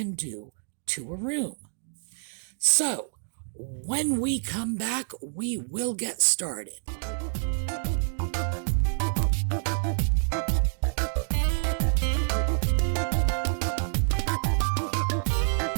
do to a room. So, when we come back, we will get started.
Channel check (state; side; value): silent; left; digital silence